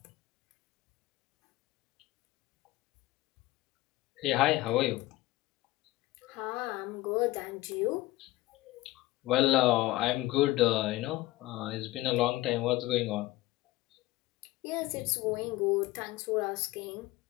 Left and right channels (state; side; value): quieter; right; 17.8 dB